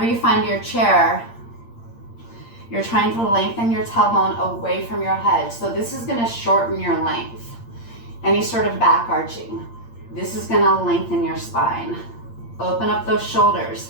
you find your chair, you're trying to lengthen your tailbone away from your head. So this is gonna shorten your length. Any sort of back arching. This is gonna lengthen your spine. Open up those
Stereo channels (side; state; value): right; late; 8.7 ms